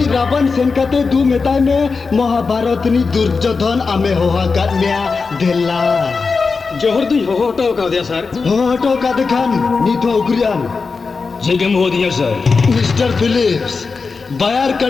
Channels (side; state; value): right; quieter; 4.6 dB